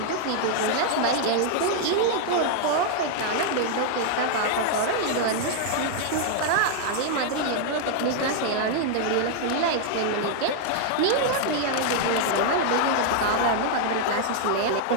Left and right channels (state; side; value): different; both; correlation 0.00